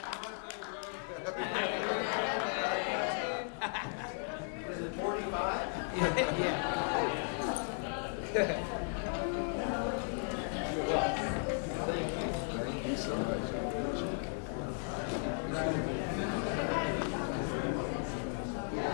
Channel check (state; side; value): silent; right; 54 dB below the other